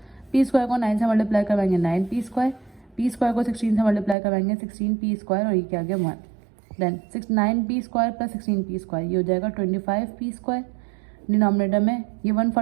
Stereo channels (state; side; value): drops out; left; at 4.2 s